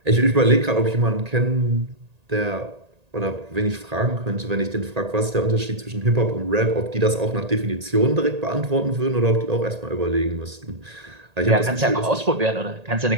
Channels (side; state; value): left; late; 1.8 ms